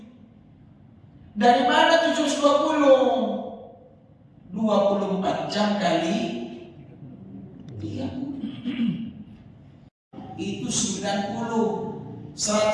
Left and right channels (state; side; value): identical; both; correlation 1.00